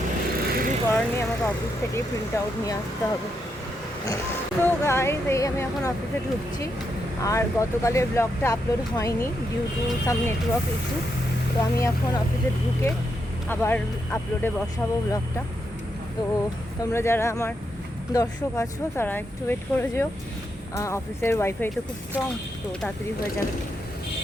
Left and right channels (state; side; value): normal; both; correlation 0.82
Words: কিছু করার নেই, আমাকে অফিস থেকেই প্রিন্ট আউট নিয়ে আসতে হবে। তো গাইজ, এই আমি এখন অফিসে ঢুকছি। আর গতকালের ব্লগটা আপলোড হয়নি due to some network issue. তো আমি এখন অফিসে ঢুকে আবার আপলোডে বসাবো ব্লগটা। তো তোমরা যারা আমার দর্শক আছো তারা একটু ওয়েট করে যেও। অফিসের ওয়াইফাই তো খুব স্ট্রং, তো তাড়াতাড়ি হয়ে যাবে।